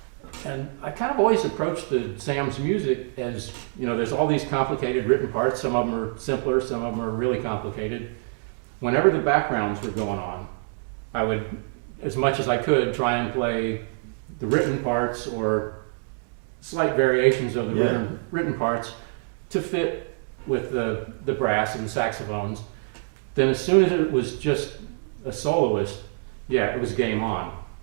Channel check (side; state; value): left; silent; digital silence